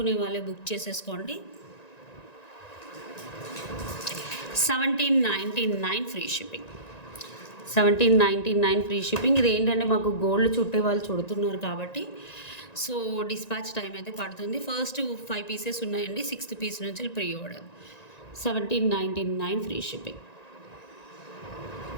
వాళ్ళే బుక్ చేసేసుకోండి. 1799 ఫ్రీ షిప్పింగ్. 1799 free shipping. ఇది ఏంటంటే మాకు గోల్డ్ చుట్టే వాళ్ళు చుడుతున్నారు కాబట్టి సో డిస్పాచ్ టైం అయితే పడుతుంది. ఫస్ట్ 5 పీసెస్ ఉన్నాయండి. 6th పీస్ నుంచి ప్రీ ఆర్డర్. 1799 free shipping.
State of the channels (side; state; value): right; late; 1.9 ms